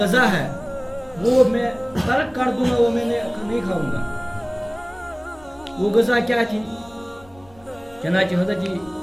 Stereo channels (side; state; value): left; noise; rumble, 25 dB below the sound